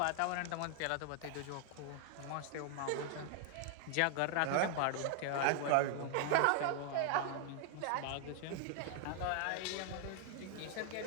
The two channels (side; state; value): both; different; correlation 0.00